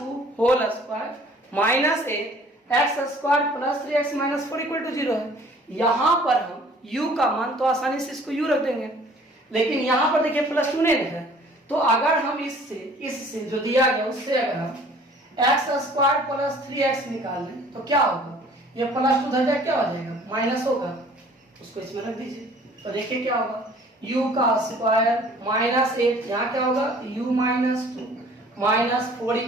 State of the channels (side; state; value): both; normal; correlation 0.52